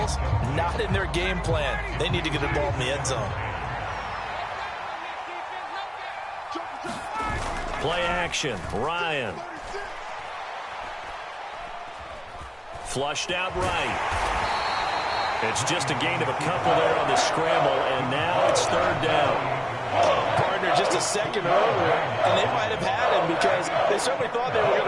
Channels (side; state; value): both; identical; correlation 1.00